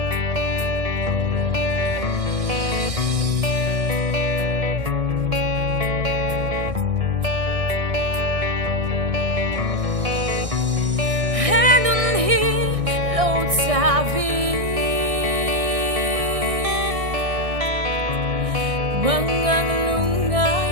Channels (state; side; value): late; left; 1.6 ms